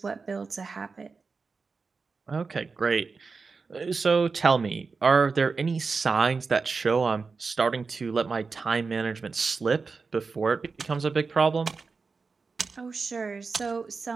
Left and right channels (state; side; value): quieter; left; 4.6 dB